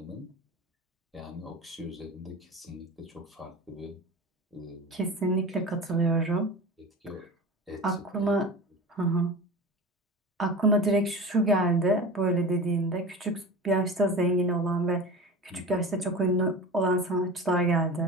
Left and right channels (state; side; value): normal; both; correlation 0.32